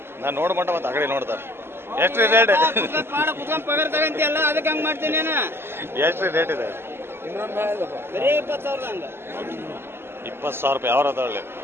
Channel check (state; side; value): late; left; 0.12 ms